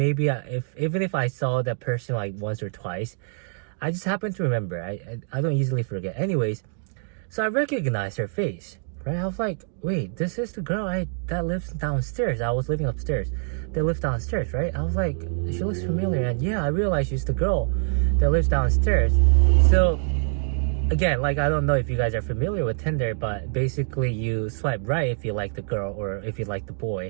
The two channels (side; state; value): left; silent; 59 dB below the other